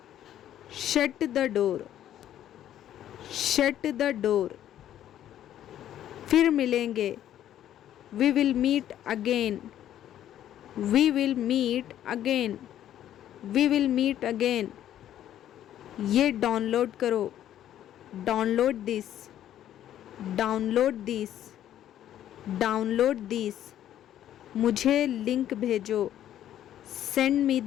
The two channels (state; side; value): quieter; right; 11.5 dB